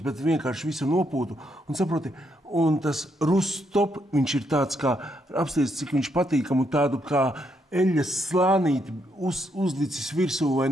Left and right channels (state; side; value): normal; both; correlation 0.76